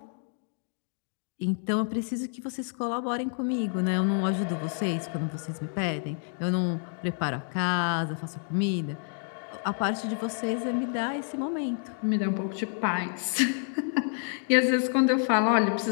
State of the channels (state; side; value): silent; right; 58 dB below the other